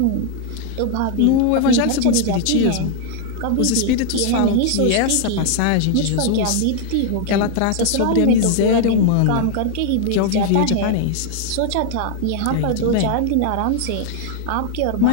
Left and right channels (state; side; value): different; both; correlation 0.00